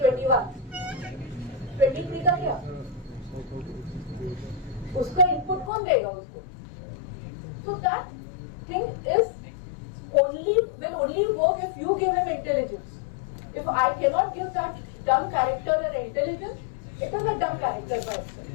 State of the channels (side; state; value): right; drops out; at 5.7 s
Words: 23 का क्या? उसका input कौन देगा उसको? So that thing will only work if you give him intelligence. If I cannot give that dumb character an intelligence, it is a dumb character by